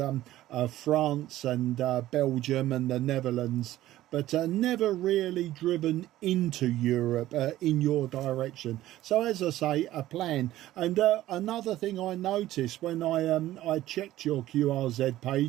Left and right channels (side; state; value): left; quieter; 14.7 dB